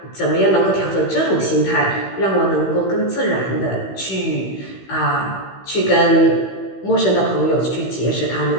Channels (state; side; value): late; right; 15 ms